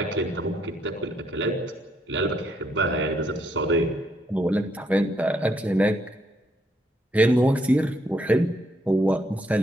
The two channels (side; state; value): both; normal; correlation 0.73